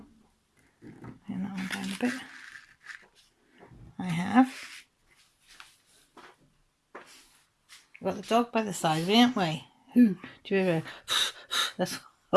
Bring that one down a bit. I have. We've got the dog by the side of me, haven't we? Do you hear her? That's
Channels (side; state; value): both; identical; correlation 1.00